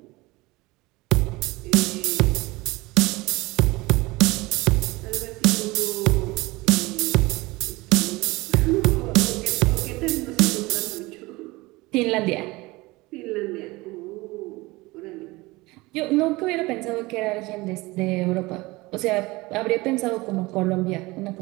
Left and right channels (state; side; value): quieter; left; 22.0 dB